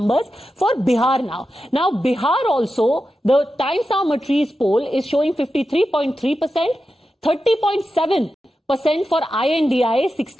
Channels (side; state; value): both; normal; correlation 0.91